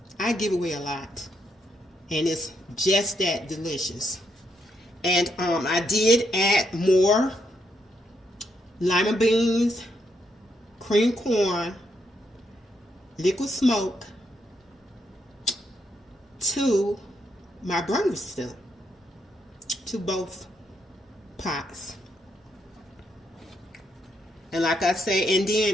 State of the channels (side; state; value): both; normal; correlation 0.78